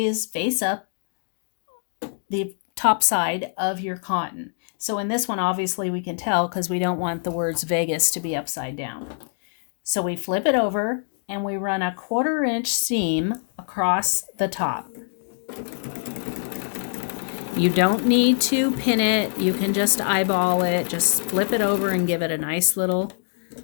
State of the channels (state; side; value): silent; right; digital silence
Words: is face up the top side of your cotton. So in this one, obviously we can tell because we don't want the words Vegas to be upside down. So we flip it over and we run a 1/4 inch seam across the top. You don't need to pin it. You can just eyeball it. Just flip it over and give it a nice little